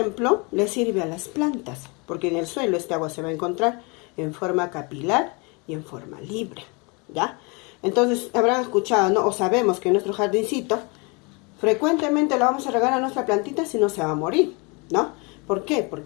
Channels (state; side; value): quieter; right; 30.0 dB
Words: le sirve a las plantas, porque en el suelo este agua se va a encontrar en forma capilar y en forma libre, ¿ya? Entonces, habrán escuchado, ¿no? O sabemos que en nuestro jardincito, frecuentemente lo vamos a regar a nuestra plantita, si no se va a morir, ¿no? ¿Por qué?